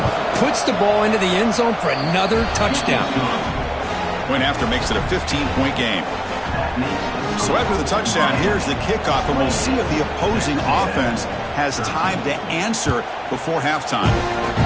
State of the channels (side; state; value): both; identical; correlation 1.00